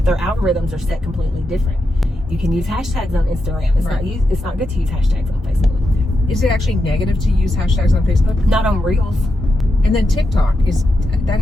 their algorithms are set completely different. You can use hashtags on Instagram. It's not good to use hashtags on Facebook. Is it actually negative to use hashtags on Facebook? Not on Reels. And then TikTok has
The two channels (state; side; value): normal; both; correlation 0.86